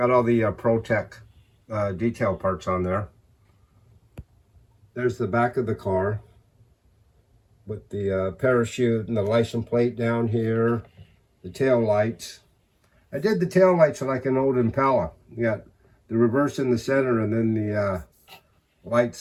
all the Protect detail parts on there. There's the back of the car with the parachute and the license plate down here, the tail lights. I did the tail lights like an old Impala. You got the reverse in the center and then the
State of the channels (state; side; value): identical; both; correlation 1.00